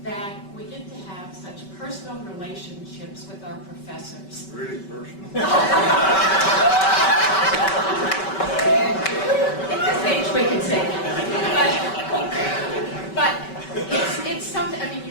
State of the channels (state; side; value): late; right; 5.2 ms